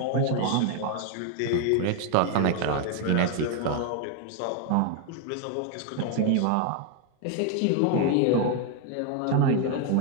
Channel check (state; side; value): different; both; correlation 0.01